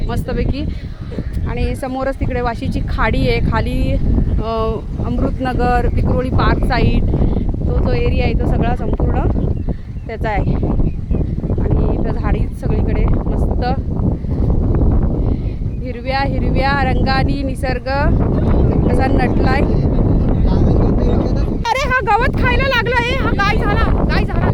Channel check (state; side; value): identical; both; correlation 1.00